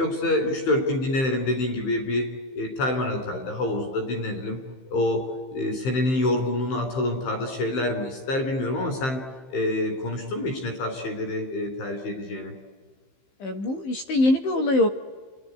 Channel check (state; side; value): late; right; 15 ms